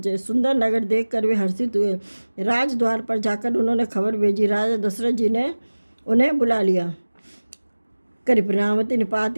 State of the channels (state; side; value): inverted; both; correlation -1.00